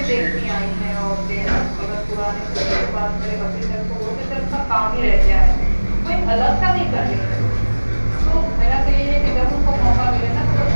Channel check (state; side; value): inverted; both; correlation -1.00